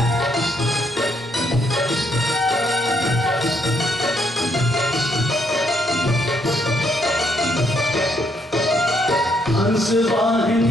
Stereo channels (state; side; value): normal; both; correlation 0.73